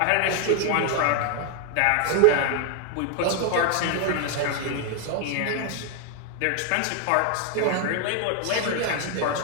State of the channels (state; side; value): different; both; correlation 0.00